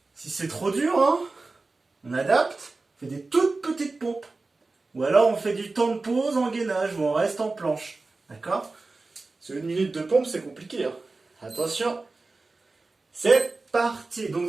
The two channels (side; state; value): left; quieter; 3.6 dB